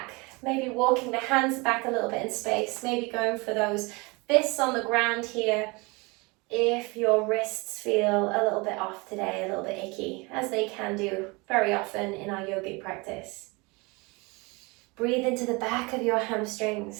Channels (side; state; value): left; quieter; 26.7 dB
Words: Maybe walking the hands back a little bit in space. Maybe going for those fists on the ground here. If your wrists feel a little bit off today, a little bit icky, as they can do very often in our yogic practice, breathe into the back of your